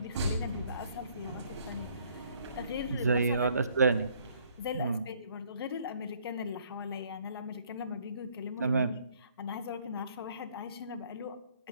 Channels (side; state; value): both; inverted; correlation -0.63